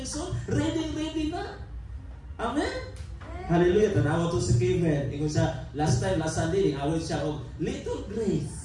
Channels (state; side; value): identical; both; correlation 1.00